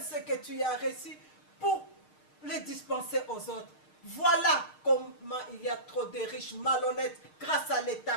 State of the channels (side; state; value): right; late; 6.5 ms